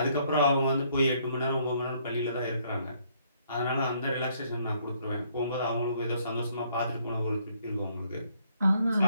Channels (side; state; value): both; inverted; correlation -0.67